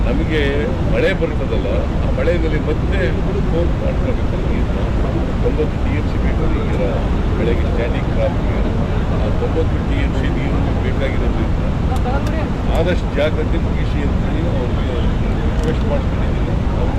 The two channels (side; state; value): both; identical; correlation 1.00